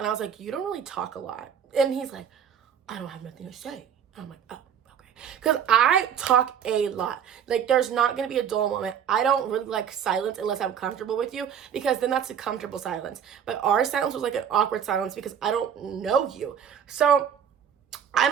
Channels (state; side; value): quieter; left; 8.3 dB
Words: I was like, you don't really talk a lot. And he's like, I don't have nothing to say. And I'm like, oh, okay. Because I talk a lot. Like, there's not going to be a dull moment. I don't really like silence unless I'm comfortable with you, because then that's a comfortable silence. But our silence was like an awkward silence because I don't know you. So